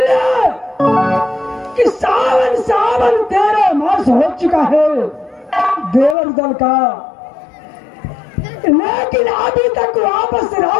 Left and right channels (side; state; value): right; drops out; at 6.2 s